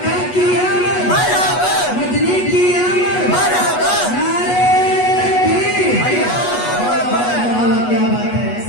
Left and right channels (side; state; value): right; late; 8.2 ms